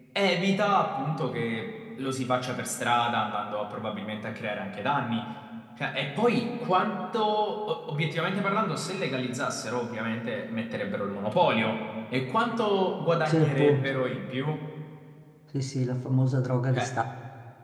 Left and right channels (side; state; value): both; identical; correlation 1.00